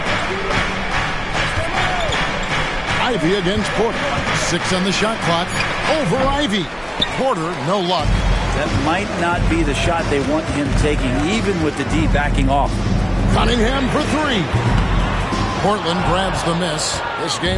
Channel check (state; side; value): identical; both; correlation 1.00